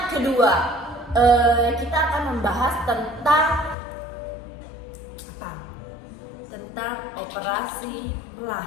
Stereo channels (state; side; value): drops out; right; at 3.8 s